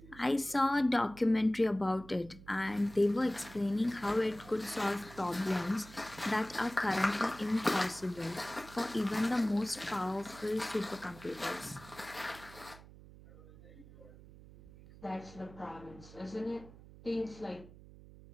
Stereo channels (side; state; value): right; noise; hum, 19 dB below the sound